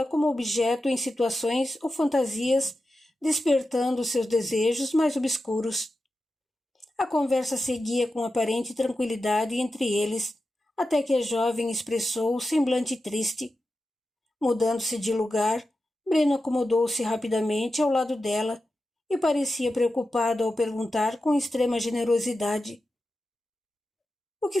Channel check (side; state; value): both; normal; correlation 0.91